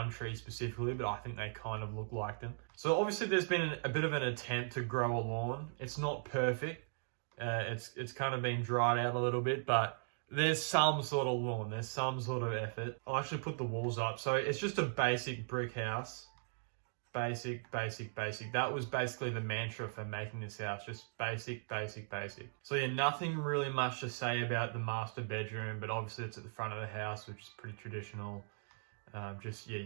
trees specifically, but I think they kind of look like them. So obviously there's been a bit of an attempt to grow a lawn. It's not perfect. It's kind of been dried out a little bit, but there's some sort of lawn, there's some sort of effort. I'll actually put the walls up. So it's just a basic brick house. Basic. That was basically the mantra for making this house. Just basic. So yeah, nothing really much to say about the master bedroom, but obviously it's at the front of the house, which is pretty traditional. Just, yeah,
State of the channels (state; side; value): silent; left; digital silence